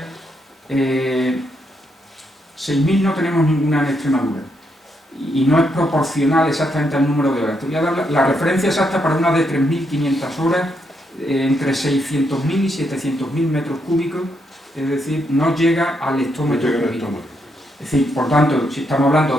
6.000 no tenemos ninguna en Extremadura y no es proporcional exactamente al número de horas. Te voy a dar la referencia exacta para una de 3.500 horas, entre 600.000 y 700.000 metros cúbicos, es decir, no llega al hectómetro cúbico. Es decir, por tanto, si estamos hablando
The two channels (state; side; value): normal; both; correlation 0.78